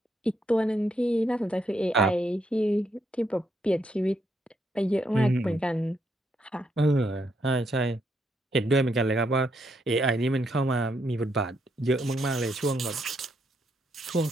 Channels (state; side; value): normal; both; correlation 0.77